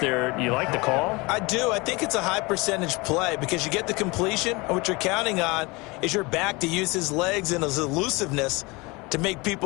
there. You like the call? I do. I think it's a high percentage play because you get the completion, and what you're counting on is your back to use his legs and his elusiveness to make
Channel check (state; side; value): quieter; right; 25.3 dB